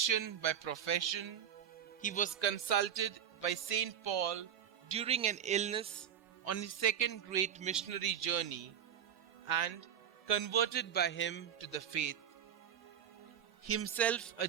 by profession, he was consulted by Saint Paul during an illness on his second great missionary journey and converted by him to the faith. Himself a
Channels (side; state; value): left; quieter; 9.1 dB